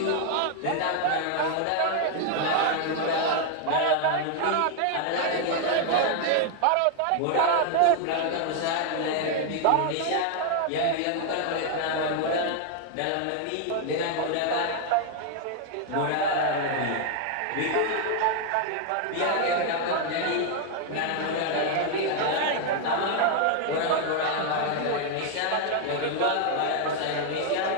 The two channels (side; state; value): both; different; correlation 0.00